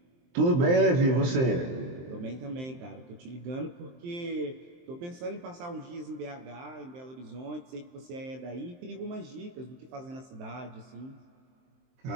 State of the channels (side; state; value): left; late; 23 ms